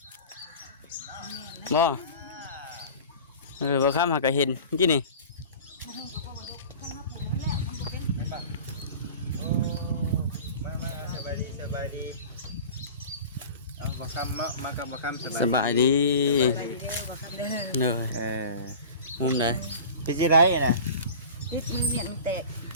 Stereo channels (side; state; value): both; inverted; correlation -0.38